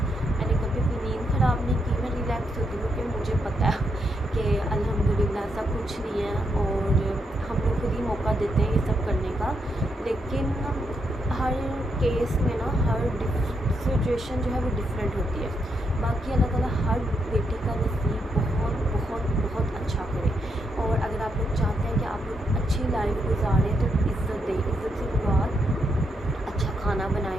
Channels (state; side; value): normal; both; correlation 0.80